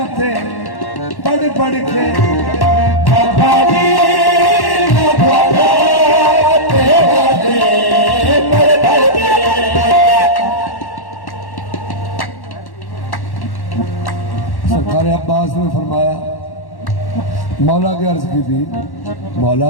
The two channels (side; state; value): right; late; 1.1 ms